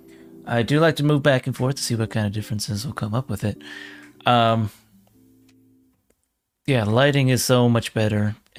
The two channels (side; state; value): both; identical; correlation 1.00